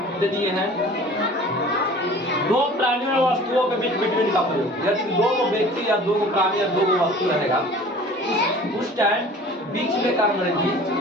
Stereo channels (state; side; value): normal; both; correlation 0.45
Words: दे दिए हैं। दो प्राणियों और वस्तुओं के बीच बिटवीन का प्रयोग। यदि दो को व्यक्ति या दो को प्राणी या दो को वस्तु रहेगा, उस टाइम बीच में का अंग्रेजी